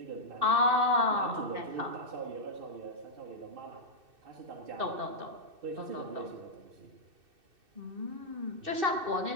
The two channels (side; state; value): left; late; 2.6 ms